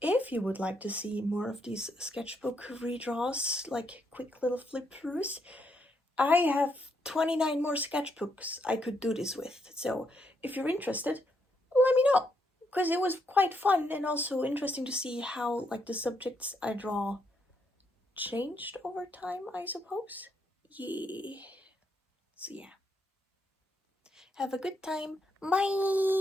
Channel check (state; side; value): normal; both; correlation 0.76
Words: If you would like to see more of these sketchbook redraws, like quick little flip throughs, I have 29 more sketchbooks I could do this with. So if you're interested, let me know, because it was quite fun and also interesting to see how like the subjects I draw changed over time, I suppose. Yeah. So yeah. Have a good time.